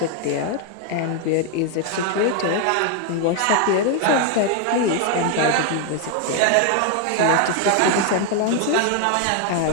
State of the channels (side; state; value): both; different; correlation 0.01